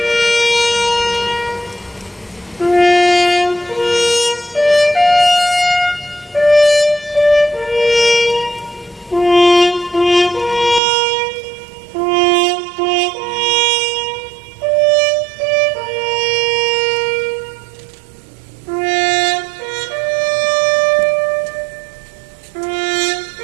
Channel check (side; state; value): left; drops out; at 10.8 s